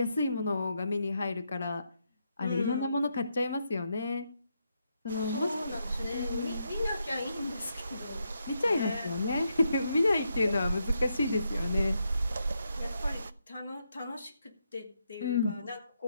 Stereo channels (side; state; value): both; inverted; correlation -0.81